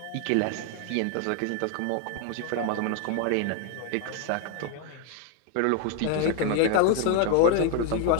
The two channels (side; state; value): both; different; correlation 0.01